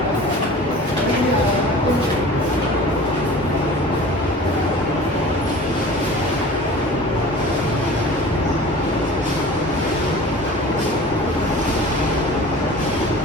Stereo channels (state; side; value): normal; both; correlation 0.41